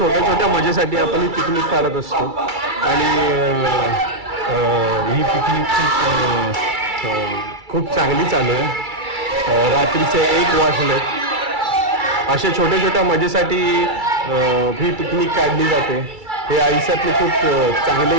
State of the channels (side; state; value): left; late; 2.3 ms